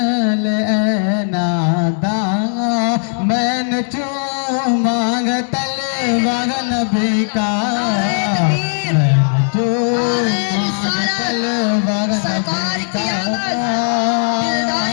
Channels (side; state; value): right; silent; 63 dB below the other